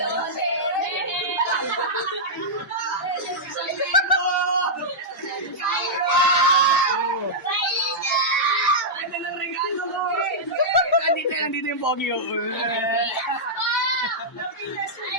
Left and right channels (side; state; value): both; normal; correlation -0.10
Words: Ano ng regalo ko? Nandito yung pogi ko.